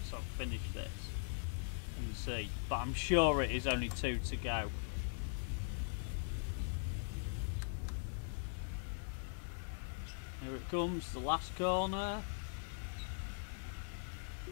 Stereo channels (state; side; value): silent; right; digital silence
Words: I've finished this and see. But I'm sure it is only 2 to go. Here it comes, the last corner.